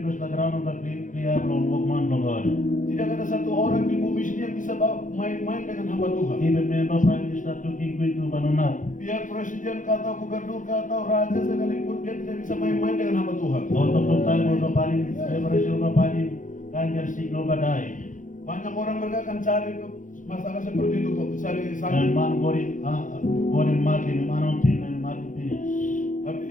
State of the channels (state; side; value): late; right; 0.38 ms